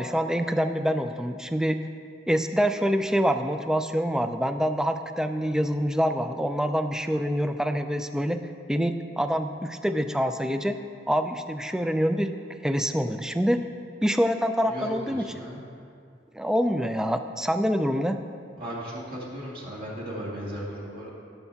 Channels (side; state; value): both; normal; correlation 0.88